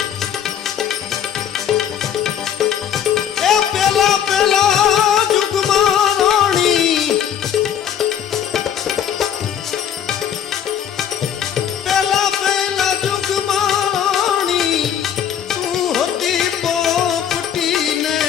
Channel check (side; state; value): right; quieter; 9.1 dB